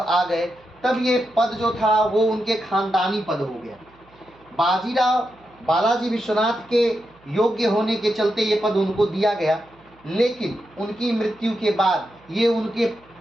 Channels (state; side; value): noise; right; hum, 30 dB below the sound